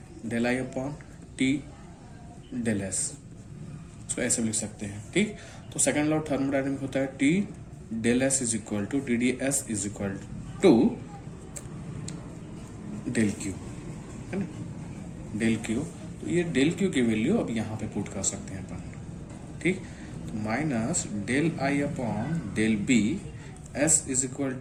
del I upon T del S, इसको ऐसे भी लिख सकते हैं। ठीक, तो सेकेंड लॉ ऑफ थर्मोडायनेमिक होता है T del S is equal to T D S is equal to del Q है ना, डेल क्यू, तो ये डेल क्यू की वैल्यू अब यहाँ पे पुट कर सकते हैं अपन। ठीक, तो minus del I upon del B S is equal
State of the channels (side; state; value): both; identical; correlation 1.00